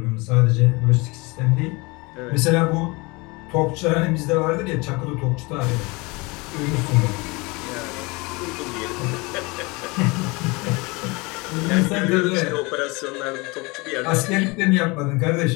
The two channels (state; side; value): quieter; right; 26.1 dB